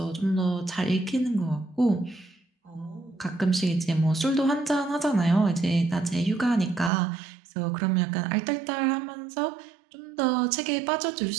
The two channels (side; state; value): left; drops out; at 6.9 s